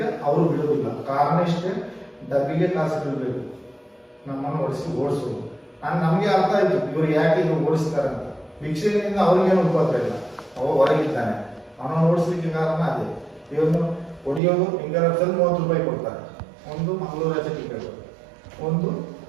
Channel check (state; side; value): drops out; left; at 14.4 s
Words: ಅವರು ಬಿಡುವುದಿಲ್ಲ. ಕಾರಣ ಇಷ್ಟೇ, ಡಬ್ಬಿಗೆ ಕಾಸು ಬಿಡಬೇಕು, ನಮ್ಮನ್ನು ಓಡಿಸೋದು. ನಮ್ಗೆ ಅರ್ಥ ಆಯ್ತು ಇವ್ರು ಯಾಕೆ ಇವ್ರು ಓಡಿಸ್ತಾರೆ ಅಂತ. ಭಿಕ್ಷೆಯಿಂದ ಅವ್ರಿಗೇನು ಉಪದ್ರ ಇಲ್ಲ, ಅವ ಹೊರಗಿದ್ದಾನೆ, ಅವನನ್ನು ಓಡಿಸ್ಲಿಕ್ಕೆ ಕಾರಣ ಅದೇ. ಇವ್ರನ್ನು ಹೊಡಿಯೋದು ಹಿಂಗಾರಲ್ಲಿ 30 ರೂಪಾಯಿ ಕೊಡ್ತಾರೆ, ಒಂದು ಮಂಗಳೂರು ಆಚೆ ಟಿಕೆಟ್, ಒಂದು